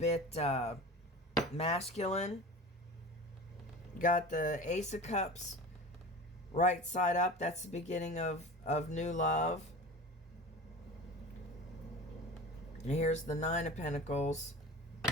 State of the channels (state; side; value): normal; both; correlation 0.34